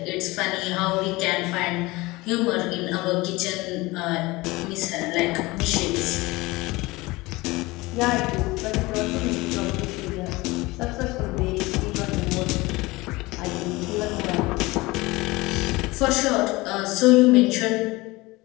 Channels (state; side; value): quieter; right; 21.7 dB